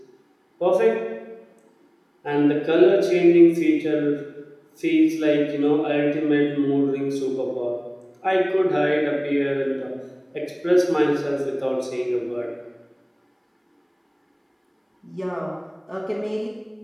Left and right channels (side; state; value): both; identical; correlation 1.00